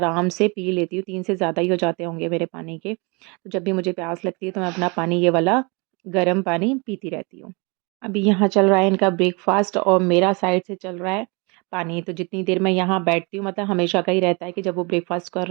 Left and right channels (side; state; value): left; quieter; 30.0 dB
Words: से पी लेती हूँ। 3 से ज़्यादा ही हो जाते होंगे मेरे पानी के। तो जब भी मुझे प्यास लगती है, तो मैं अपना पानी ये वाला गर्म पानी पीती रहती हूँ। अभी यहाँ चल रहा है इनका ब्रेकफ़ास्ट और मेरा साइड से चल रहा है पानी। तो जितनी देर मैं यहाँ बैठती हूँ, मतलब हमेशा का ही रहता है कि जब वो ब्रेकफ़ास्ट कर